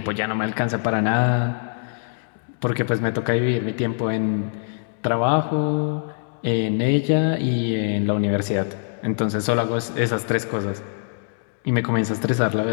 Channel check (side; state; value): right; silent; digital silence